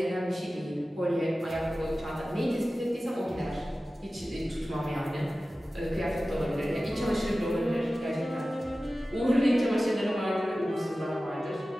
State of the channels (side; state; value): both; normal; correlation 0.95